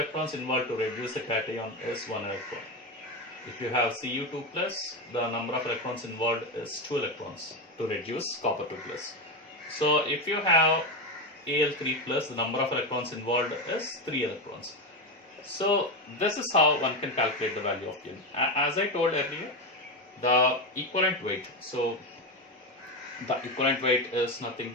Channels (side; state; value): both; normal; correlation 0.14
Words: involved to reduce the cation is 1 electron. If you have Cu2 plus, the number of electrons involved is 2 electrons to reduce copper 2 plus. So if you have Al3 plus, the number of electrons involved is 3 electrons. So this is how one can calculate the value of Q. As I told earlier, the equivalent weight. So the equivalent weight is nothing